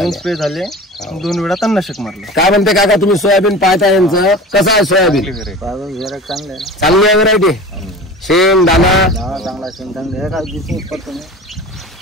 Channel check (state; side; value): normal; both; correlation 0.36